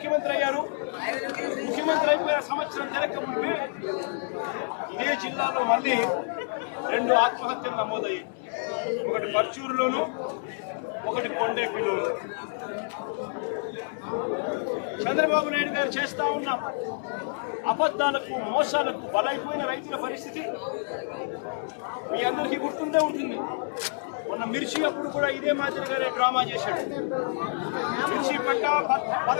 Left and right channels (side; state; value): right; silent; digital silence